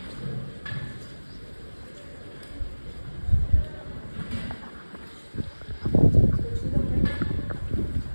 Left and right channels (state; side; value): inverted; both; correlation -1.00